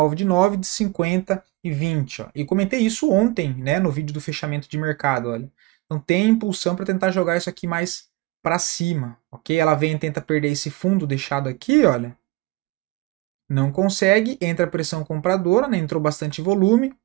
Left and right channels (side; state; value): left; quieter; 20.6 dB